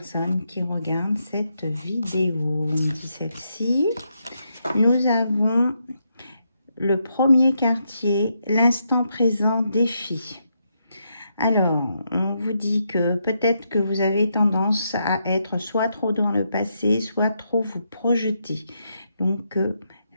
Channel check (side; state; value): both; inverted; correlation -0.80